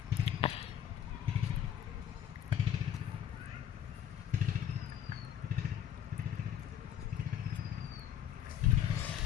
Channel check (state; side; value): quieter; right; 9.9 dB